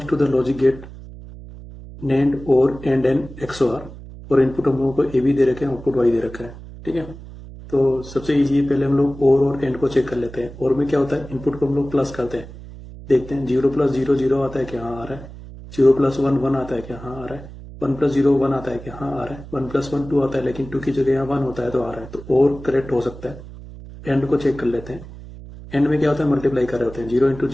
to the logic gate NAND OR and an XOR, और इनपुट हम लोगों को ए बी दे रखे हैं, आउटपुट वाई दे रखा है। ठीक है, तो सबसे इजी है, पहले हम लोग और एंड को चेक कर लेते हैं। और में क्या होता है, इनपुट को हम लोग प्लस करते हैं, देखते हैं 0 + 0 0 आता है क्या, हाँ आ रहा है। 0 + 1 1 आता है क्या, हाँ आ रहा है। 1 + 0 1 आता है क्या, हाँ आ रहा है। 1 + 1 2 आता है, लेकिन 2 की जगह यहाँ 1 होता है तो आ रहा है, तो और करेक्ट हो सकता है। एंड को चेक कर लेते हैं। एंड में क्या होता है, मल्टीप्लाई कर रहे होते हैं, 0 ×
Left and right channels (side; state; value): right; noise; hum, 15 dB below the sound